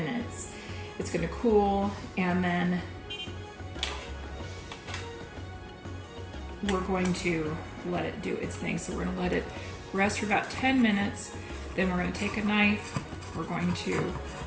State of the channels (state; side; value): identical; both; correlation 1.00